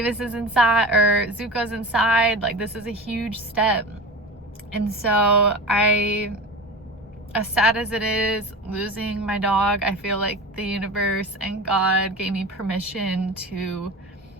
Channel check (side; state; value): both; normal; correlation 0.30